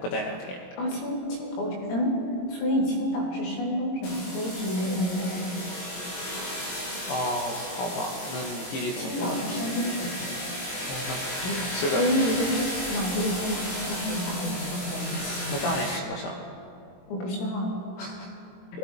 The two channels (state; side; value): late; right; 22 ms